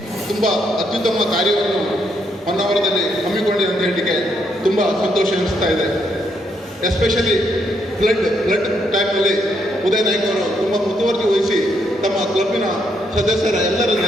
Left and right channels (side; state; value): both; normal; correlation 0.75